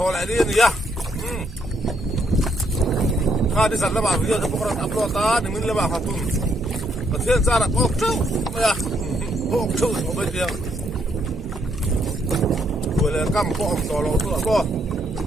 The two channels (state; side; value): normal; both; correlation 0.73